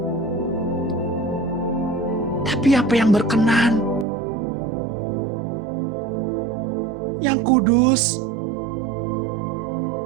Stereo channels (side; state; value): left; drops out; at 4.0 s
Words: tapi apa yang berkenan, yang kudus,